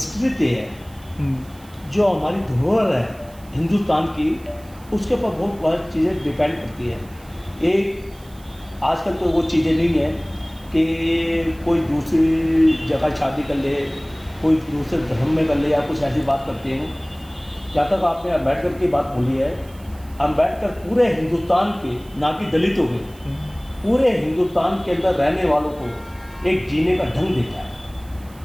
है, जो हमारी धरोहर है हिंदुस्तान की, उसके ऊपर बहुत सारी चीज़ें डिपेंड करती है। एक आजकल तो वो चीज़ें नहीं है कि कोई दूसरी जगह शादी कर ले, कोई दूसरे धर्म में कर ले या कुछ ऐसी बात करते हैं। जहाँ तक आपने अम्बेडकर की बात बोली है, अम्बेडकर पूरे हिंदुस्तान के, ना कि दलितों के, पूरे हिंदुस्तान के अंदर रहने वालों को एक जीने का ढंग देता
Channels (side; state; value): right; noise; hiss, 25 dB below the sound